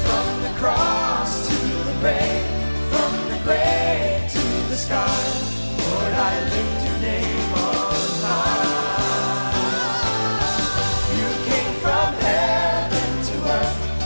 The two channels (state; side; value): inverted; both; correlation -1.00